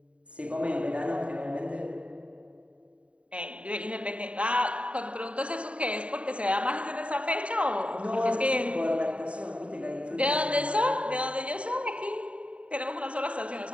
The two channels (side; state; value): left; late; 0.063 ms